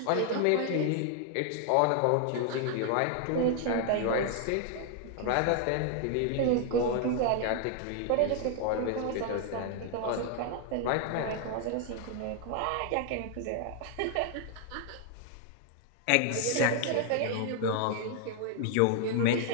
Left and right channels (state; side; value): different; both; correlation 0.00